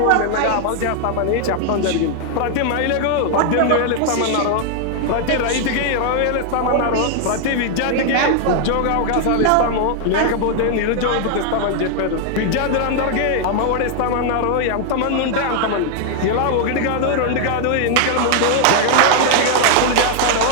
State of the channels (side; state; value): both; different; correlation 0.00